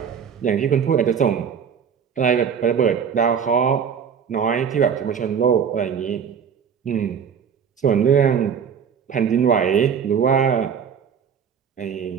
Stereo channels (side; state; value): left; quieter; 7.4 dB